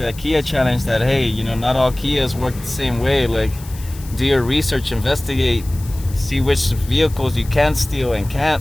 Kia challenge. That, hey, you know, not all Kias work the same way. Like, do your research, investigate, see which vehicles you can steal and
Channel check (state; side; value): noise; left; hiss, 19 dB below the sound